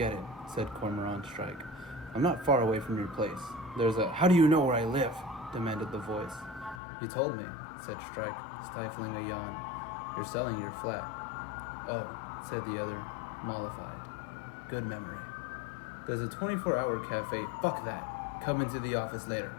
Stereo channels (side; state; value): right; drops out; at 6.8 s